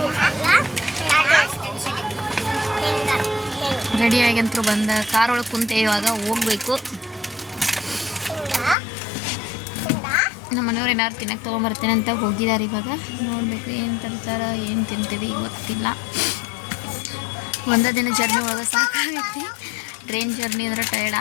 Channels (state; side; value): drops out; right; at 8.8 s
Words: ರೆಡಿಯಾಗಂತೂ ಬಂದ ಕಾರ್ ಒಳಗೆ ಕುಂತೆ ಇವಾಗ ಹೋಗ್ಬೇಕು. ನಮ್ಮ ಮನೆಯವ್ರು ಏನಾದ್ರು ತಿನ್ನಕ್ಕೆ ತೊಗೊಂಬರ್ತೇನೆ ಅಂತ ಹೋಗಿದ್ದಾರೆ. ಇವಾಗ ನೋಡಬೇಕು ಏನು ತರ್ತಾರ, ಏನು ತಿಂತೀವಿ ಗೊತ್ತಿಲ್ಲ. ಒಂದೇ ದಿನ ಜರ್ನಿ ಒಳಗೆ ಸಾಕಾಗೈತಿ. ಟ್ರೈನ್ ಜರ್ನಿ ಅಂದ್ರೆ ಟಯರ್ಡ್